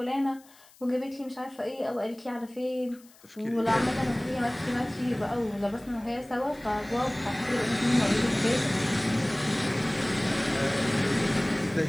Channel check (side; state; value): left; noise; hiss, 26 dB below the sound